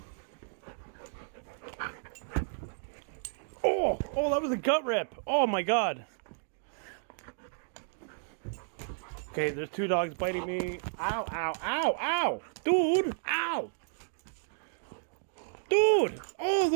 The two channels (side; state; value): left; silent; digital silence